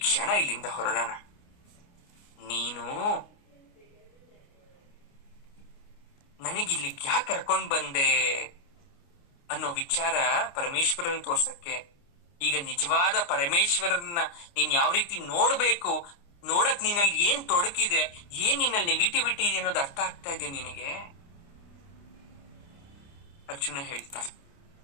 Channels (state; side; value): late; right; 29 ms